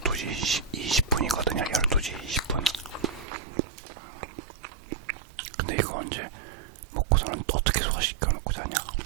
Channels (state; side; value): drops out; left; at 3.2 s